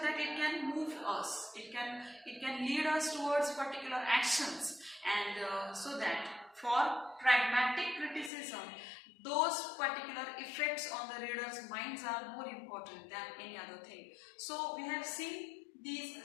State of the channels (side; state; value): right; drops out; at 8.3 s